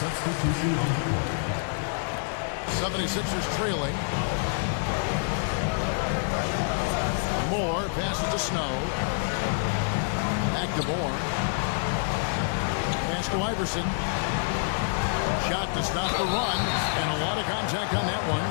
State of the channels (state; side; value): silent; right; digital silence